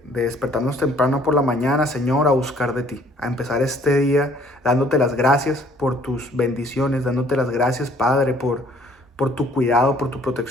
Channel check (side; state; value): both; normal; correlation 0.59